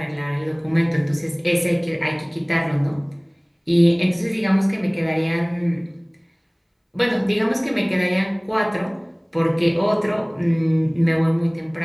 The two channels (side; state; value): both; identical; correlation 1.00